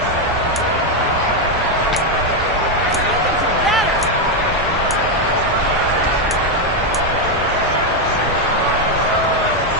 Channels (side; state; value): both; normal; correlation 0.04